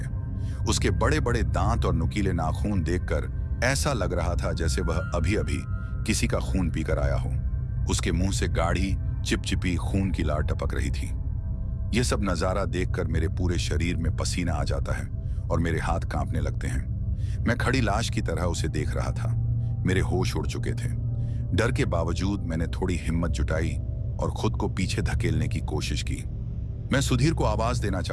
उसके बड़े बड़े दांत और नुकीले नाखून देखकर ऐसा लग रहा था जैसे वह अभी अभी किसी का खून पीकर आया हो। उसके मुंह से गाढ़ी चिपचिपी खून की लार टपक रही थी। यह सब नजारा देखकर मेरे पूरे शरीर में पसीना आ जाता है और मेरे हाथ कांपने लगते हैं। मैं खड़ी लाश की तरह उसे देख रहा था। मेरे होश उड़ चुके थे। डर के बावजूद मैंने थोड़ी हिम्मत जुटाई और खुद को पीछे धकेलने की कोशिश की। मैं सुधीर को आवाज देना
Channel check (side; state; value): both; identical; correlation 1.00